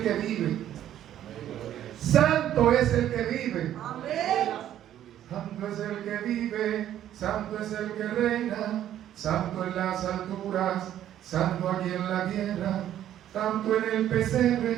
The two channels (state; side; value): quieter; left; 11.5 dB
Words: que vive. Santo es el que vive. Santo es el que vive, santo es el que reina, santo en las alturas, santo aquí en la tierra, santo en el